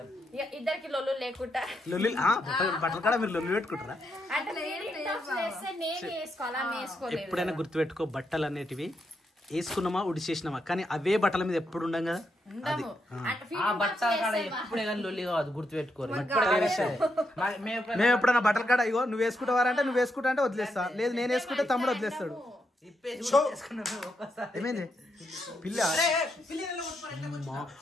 ఇద్దరికి లొల్లు లేకుండా లొల్లి బట్టలు కూడా మీరు లొల్లి పెట్టుకుంటారా? అంటే నేను వేసుకోవాలా వేసుకోలేదు. ఎప్పుడైనా గుర్తుపెట్టుకో బట్టలు అనేటివి వేసుకున్నామా ఉడిచేసినామా, కానీ అవే బట్టల మీద ఎప్పుడు ఉండం కదా. ఉండము ఆ బట్ట కాడ ఎప్పుడే కానీ లొల్లి కాదు, గుర్తుపెట్టుకోరు. మేము ఎప్పుడన్నా బట్టల కాడ ఇగో నువ్వు వేసుకుంటావారంటే నువ్వు వేసుకుంటా అంటే వదిలేస్తా, లేదు నేను వేసుకుంటే తమ్ముడు వదిలేస్తాడు. ఏమైంది పిల్ల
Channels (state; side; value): normal; both; correlation 0.81